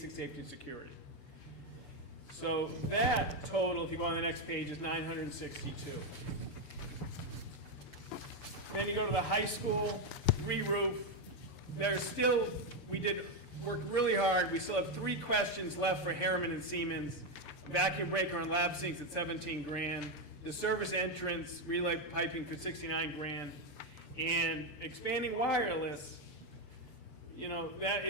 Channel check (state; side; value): late; right; 6.8 ms